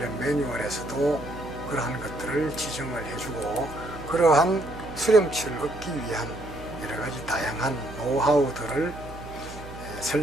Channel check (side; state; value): right; noise; hum, 14 dB below the sound